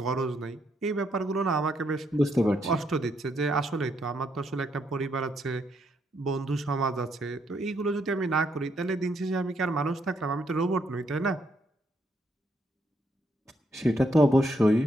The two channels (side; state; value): both; normal; correlation 0.75